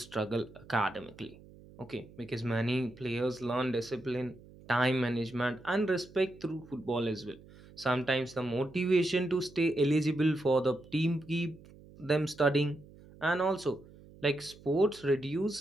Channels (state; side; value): noise; right; hum, 21 dB below the sound